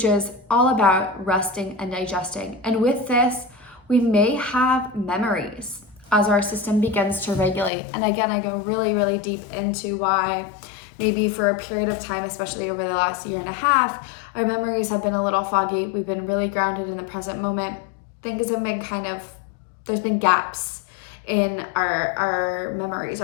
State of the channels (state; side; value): drops out; right; at 7.7 s